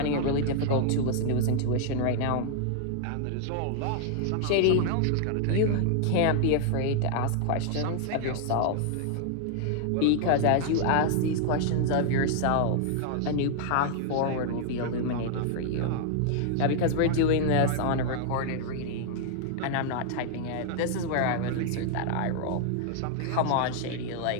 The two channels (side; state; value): both; different; correlation 0.00